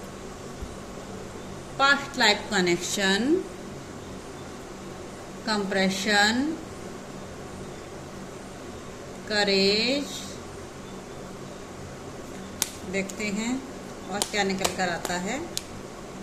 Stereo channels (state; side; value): identical; both; correlation 1.00